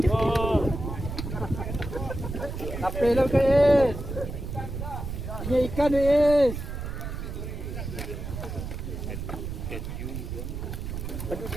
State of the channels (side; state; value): right; noise; rumble, 6 dB below the sound